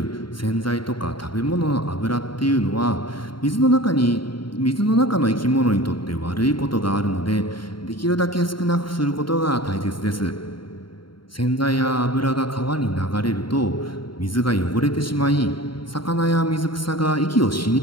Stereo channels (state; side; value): late; right; 0.73 ms